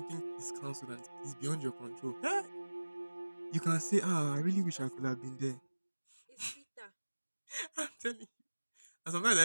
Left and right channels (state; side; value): inverted; both; correlation -1.00